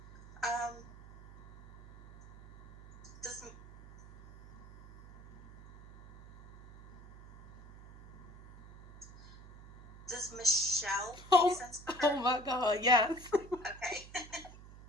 Does Michelle make sense for her? Oh my God, yes. Okay.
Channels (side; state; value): right; noise; hum, 19 dB below the sound